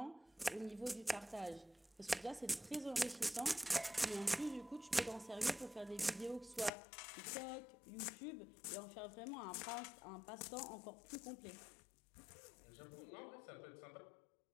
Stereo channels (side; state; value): right; drops out; at 6.7 s